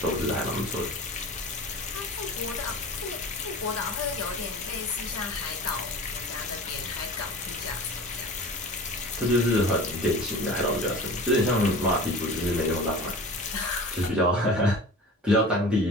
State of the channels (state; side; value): normal; both; correlation 0.37